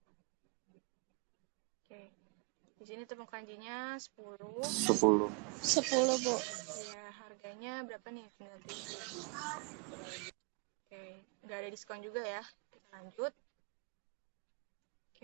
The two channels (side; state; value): left; quieter; 34.8 dB